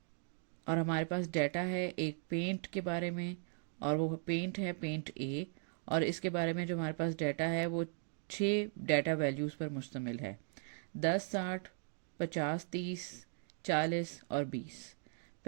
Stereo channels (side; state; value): left; silent; 52 dB below the other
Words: और हमारे पास डाटा है एक पेंट के बारे में, और वो पेंट है पेंट ए, और इसके बारे में जो हमारे पास डाटा है वो 6 डाटा वैल्यूज़ पर मुश्तमिल है, 10, 60, 50, 30, 40 और 20।